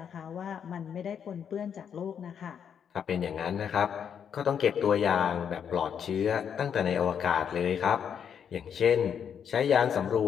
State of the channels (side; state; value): right; quieter; 7.9 dB